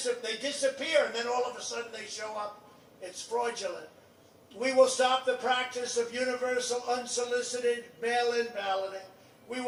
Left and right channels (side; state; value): both; identical; correlation 1.00